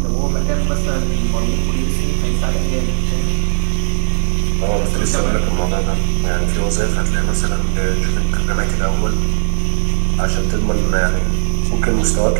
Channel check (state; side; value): silent; left; digital silence